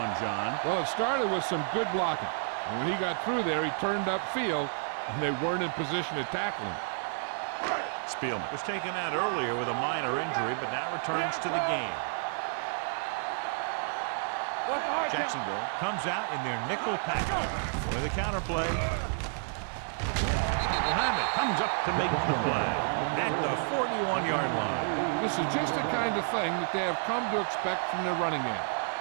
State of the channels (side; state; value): left; silent; digital silence